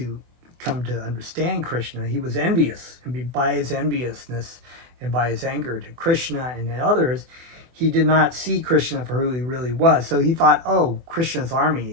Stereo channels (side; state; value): left; late; 24 ms